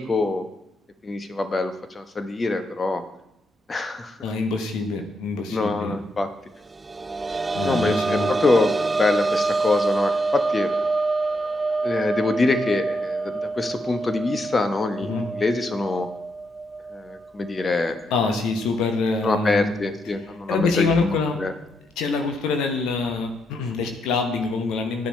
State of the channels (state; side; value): normal; both; correlation 0.81